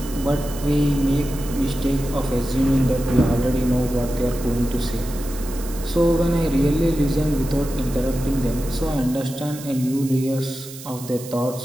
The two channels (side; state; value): right; noise; hiss, 15 dB below the sound